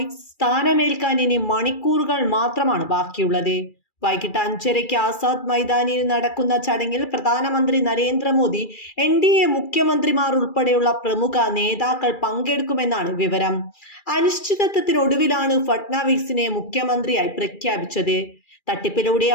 സ്ഥാനമേൽക്കാൻ ഇനി മണിക്കൂറുകൾ മാത്രമാണ് ബാക്കിയുള്ളത്. വൈകിട്ട് 5:30 ആസാദ് മൈതാനിയിൽ നടക്കുന്ന ചടങ്ങിൽ പ്രധാനമന്ത്രി നരേന്ദ്രമോദി, NDA മുഖ്യമന്ത്രിമാർ ഉൾപ്പെടെയുള്ള പ്രമുഖ നേതാക്കൾ പങ്കെടുക്കുമെന്നാണ് വിവരം. അനിശ്ചിതത്വത്തിനൊടുവിലാണ് ഫട്നാവിസിനെ മുഖ്യമന്ത്രിയായി പ്രഖ്യാപിച്ചത്.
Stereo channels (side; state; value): right; late; 2.4 ms